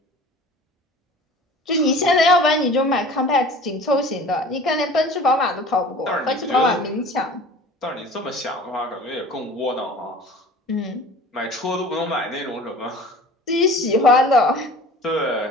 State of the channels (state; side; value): normal; both; correlation 0.43